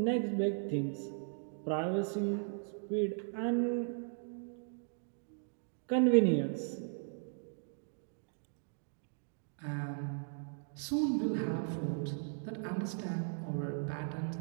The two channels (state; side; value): silent; left; digital silence